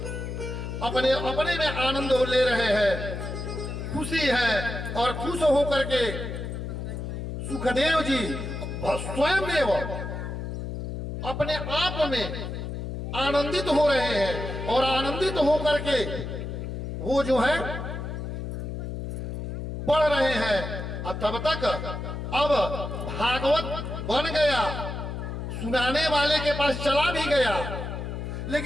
अपने अपने में आनंद ले रहे हैं, खुशी है, और खुश होकर के सुखदेव जी स्वयं अपने आप में आनंदित हो रहे हैं। और आनंदित होकर के वो जो है पढ़ रहे हैं। और तब तक अब भागवत बन गया, सुनाने वाले के पास चला भी गया,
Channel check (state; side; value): noise; left; hum, 5 dB below the sound